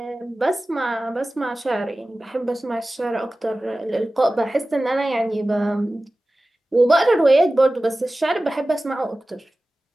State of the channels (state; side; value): normal; both; correlation 0.96